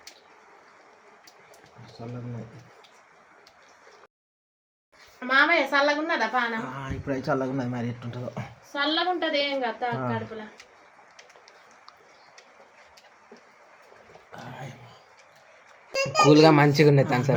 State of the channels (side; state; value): both; identical; correlation 1.00